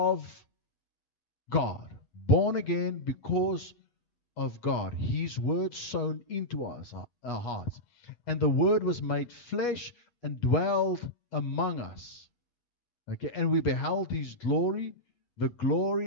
God. Born again because of God. His word sown into us, our hearts. And the word was made flesh and dwelled among us. Okay, and we beheld his glory, the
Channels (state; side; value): late; right; 8.3 ms